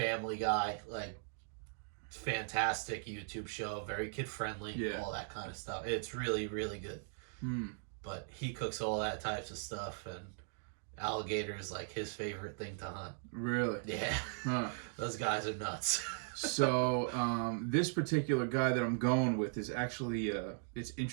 guy, like fantastic YouTube show, very kid friendly, all that kind of stuff. It's really, really good. But he cooks all that types of stuff, and alligator is like his favorite thing to hunt. Really? Yeah. Huh. Those guys are nuts. So this particular guy that I'm going with is actually it's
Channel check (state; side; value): silent; left; digital silence